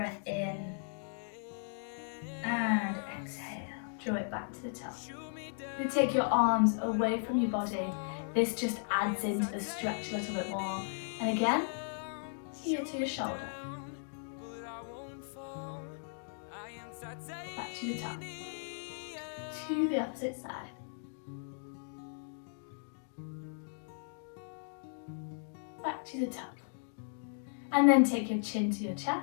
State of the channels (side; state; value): right; silent; digital silence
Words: in and exhale. Draw it back to the top. You take your arms away from your body. This just adds into the stretch a little bit more. And again, here to your shoulder. Back to the top. To the opposite side. Back to the top. And then take your chin to your